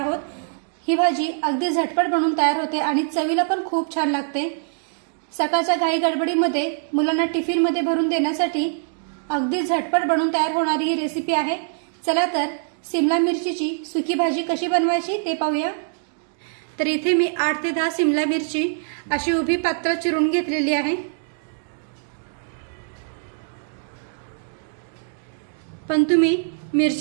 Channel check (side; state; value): left; silent; digital silence